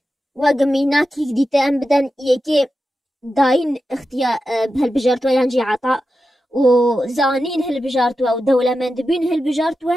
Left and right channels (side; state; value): both; normal; correlation 0.91